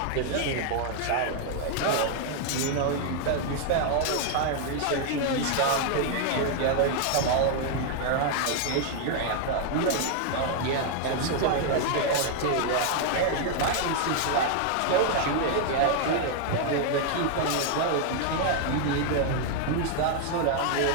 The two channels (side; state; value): both; different; correlation 0.00